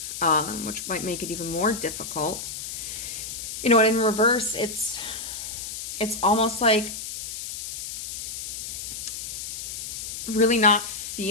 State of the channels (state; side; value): noise; left; hiss, 7 dB below the sound